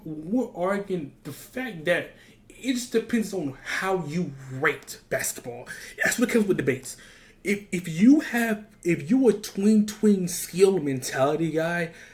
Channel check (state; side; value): identical; both; correlation 1.00